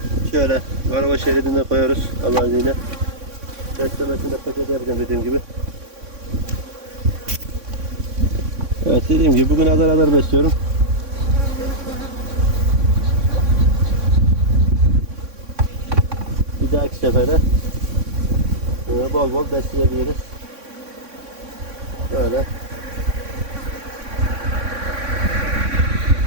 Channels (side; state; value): left; late; 3.6 ms